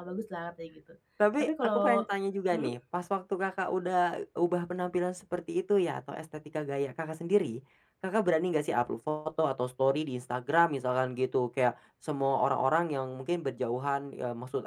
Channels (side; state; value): both; identical; correlation 1.00